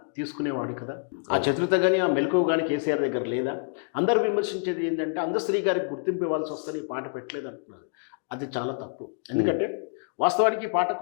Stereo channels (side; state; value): right; silent; digital silence